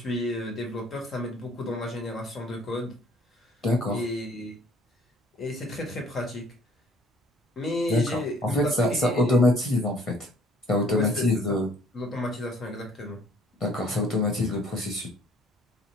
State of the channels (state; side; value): normal; both; correlation 0.58